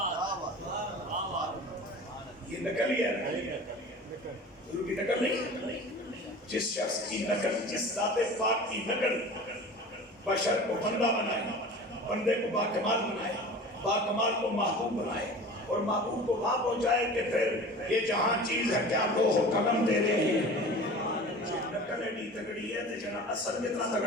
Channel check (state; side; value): normal; both; correlation 0.38